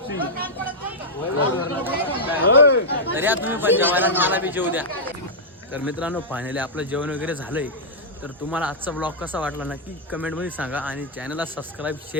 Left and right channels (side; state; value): both; normal; correlation -0.08